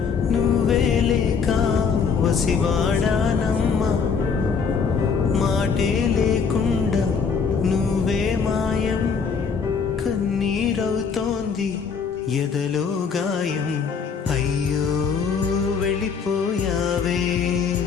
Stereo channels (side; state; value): right; quieter; 5.9 dB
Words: నువ్వే లేక వసివాడానమ్మా మాటే లేకుండా నువ్వే మాయం కన్నీరవుతోంది ఎదలో గాయం అయ్యో వెళ్ళిపోయావే